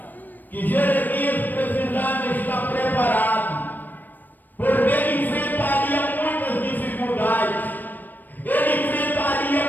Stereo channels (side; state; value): right; late; 0.089 ms